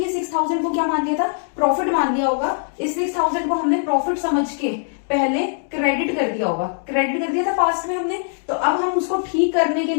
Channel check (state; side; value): silent; right; digital silence